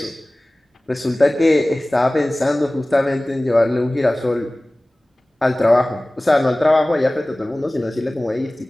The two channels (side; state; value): both; normal; correlation 0.98